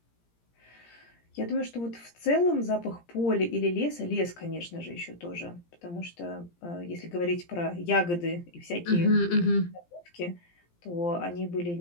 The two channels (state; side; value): late; right; 17 ms